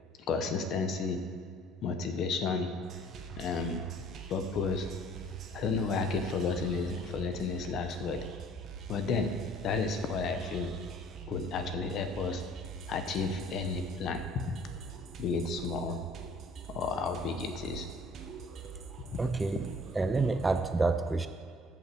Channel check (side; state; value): both; normal; correlation 0.54